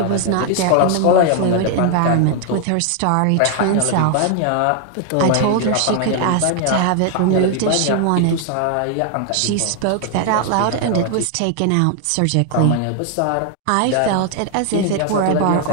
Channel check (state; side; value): different; both; correlation 0.00